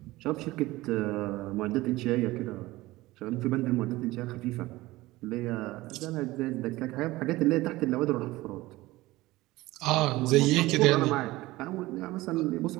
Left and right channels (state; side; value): quieter; left; 18.9 dB